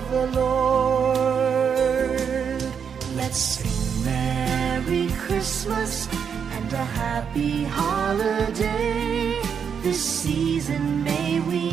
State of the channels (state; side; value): quieter; left; 7.1 dB